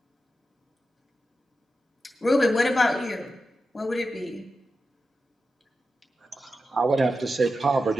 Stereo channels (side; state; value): both; normal; correlation 0.91